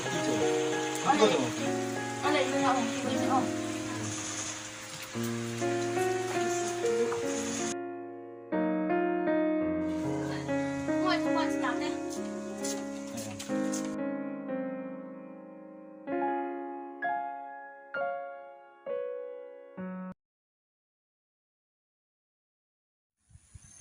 chơi. Không có rồi. Ăn lấy nó không? Đi với không? Ngồi không ngồi làm đây.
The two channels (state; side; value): identical; both; correlation 1.00